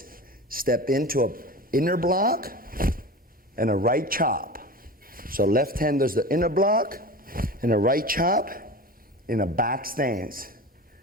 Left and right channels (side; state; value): both; normal; correlation 0.32